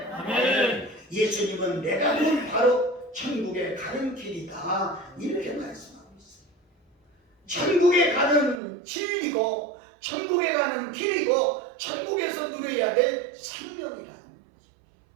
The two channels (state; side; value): drops out; left; at 8.6 s